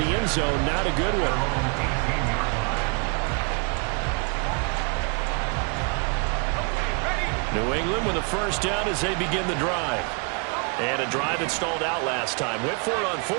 end zone, not a good one. New England with a first down as they begin the drive. And a drive that stalled out last time. Went for it on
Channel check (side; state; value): left; quieter; 35.3 dB